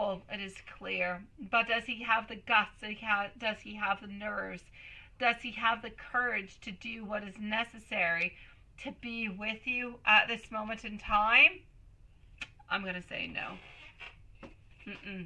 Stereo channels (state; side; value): identical; both; correlation 1.00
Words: it is clear. But does he have the guts? Does he have the nerves? Does he have the courage to do what is necessary to be with you at this moment in time? I'm going to say no.